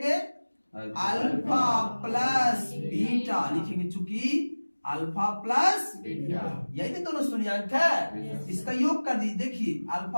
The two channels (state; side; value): inverted; both; correlation -1.00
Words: अल्फा प्लस बीटा लिखेंगे, चूंकि अल्फा प्लस बीटा यही तो दोनों शून्यांक है। इसका योग कर दीजिए, देखिए